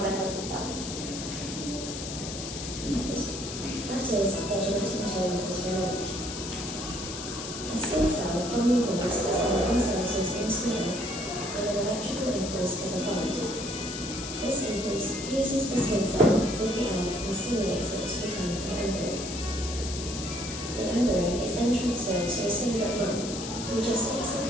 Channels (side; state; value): left; noise; hiss, 8 dB below the sound